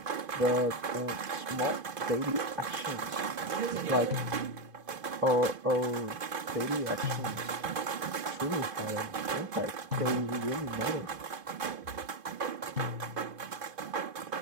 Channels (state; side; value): late; left; 2.5 ms